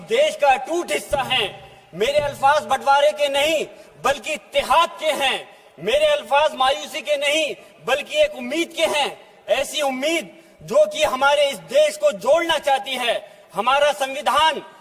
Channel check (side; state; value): both; identical; correlation 1.00